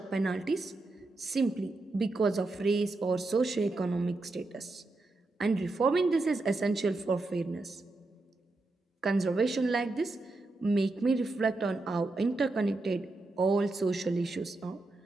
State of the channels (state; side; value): quieter; left; 3.1 dB